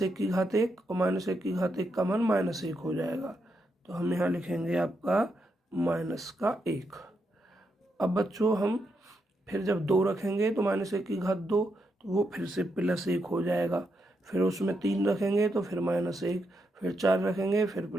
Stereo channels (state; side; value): normal; both; correlation 0.82